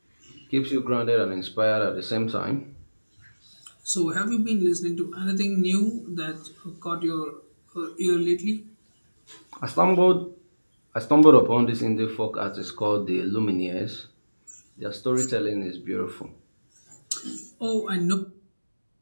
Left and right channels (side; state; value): both; inverted; correlation -1.00